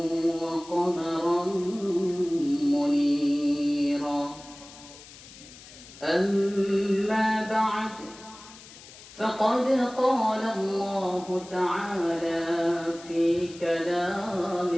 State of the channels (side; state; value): left; noise; hiss, 19 dB below the sound